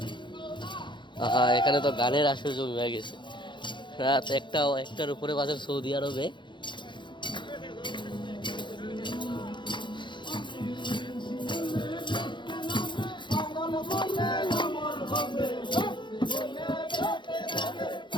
এখানে তো গানের আসর জমি হয়ে গেছে। রাত একটার উপরে বাজে সৌদি আরবে।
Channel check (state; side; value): late; right; 0.23 ms